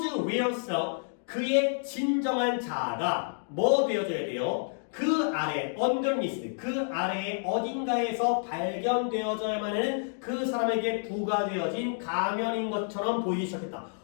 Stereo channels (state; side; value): silent; right; digital silence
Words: real self 그의 진정한 자아가 뭐 되어져야 돼요? 그 아래 underneath 그 아래에 어딘가에서 발견되어져야만 하는 그 사람에게 부과되어진 가면인 것처럼 보이기 시작했다.